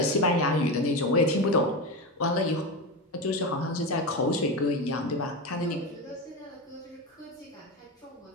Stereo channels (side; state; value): both; normal; correlation 0.18